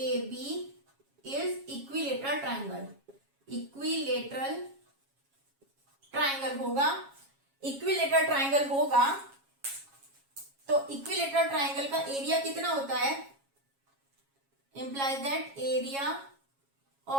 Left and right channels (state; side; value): late; left; 7.3 ms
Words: B is equilateral triangle. Equilateral triangle होगा, तो इक्विलेटरल ट्राइंगल का एरिया कितना होता है, implies that area